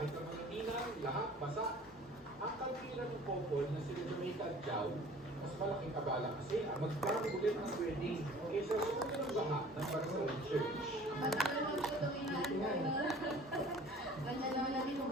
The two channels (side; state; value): both; normal; correlation 0.48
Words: ang mga ninang, lahat basa. Ang kalbiran ng couple na sila Jamaica at Jao, mas malaking kabala kasi ang magplano ulit ng wedding kaysa sumunod ng baha ng Barcelona Church. Ano naman po itong inaantay na? Ganyan naman natin po